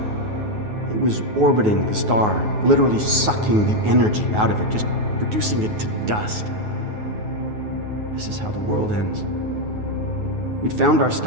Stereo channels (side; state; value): left; late; 9.4 ms